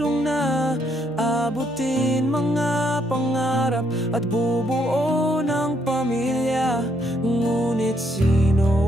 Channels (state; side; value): normal; both; correlation 0.73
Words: na abutin mga pangarap at bubuo ng pamilya. Ngunit